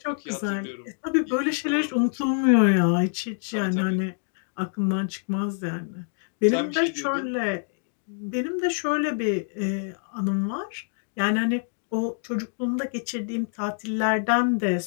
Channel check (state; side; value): silent; right; 61 dB below the other